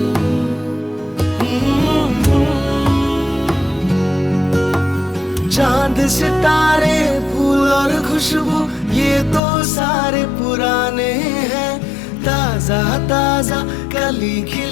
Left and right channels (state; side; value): drops out; right; at 9.4 s